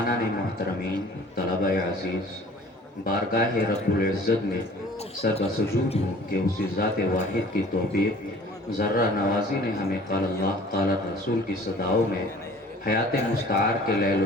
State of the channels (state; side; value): normal; both; correlation 0.49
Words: محترمین، طلبہ عزیز، بارگاہ رب العزت میں سر بسجود ہوں کہ اسی ذات واحد کی توفیق ذرہ نوازی نے ہمیں قال اللہ قال رسول کی صداؤں میں حیات مستعار کے لیل